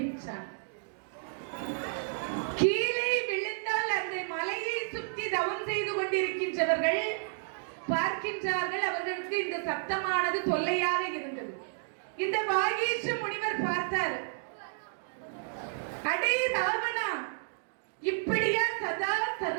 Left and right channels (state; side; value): silent; left; digital silence